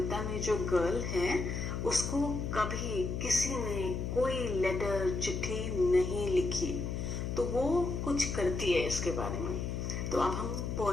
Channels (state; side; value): noise; left; hum, 3 dB below the sound